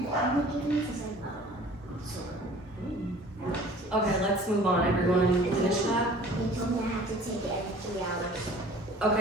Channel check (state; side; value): normal; both; correlation 0.48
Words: Okay, let's move on. Everyone finish that?